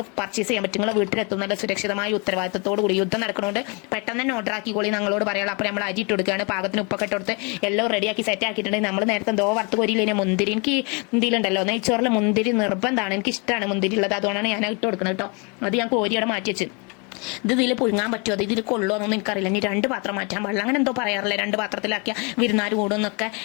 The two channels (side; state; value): right; quieter; 32.3 dB